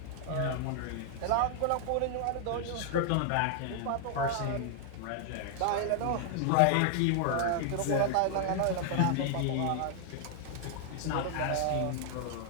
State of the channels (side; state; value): both; different; correlation 0.00